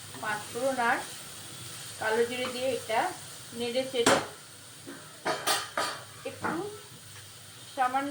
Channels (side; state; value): both; identical; correlation 1.00